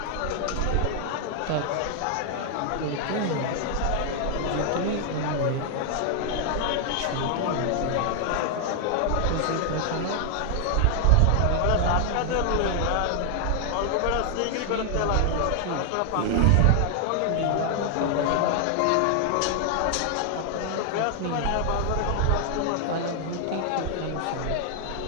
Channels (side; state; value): both; different; correlation 0.00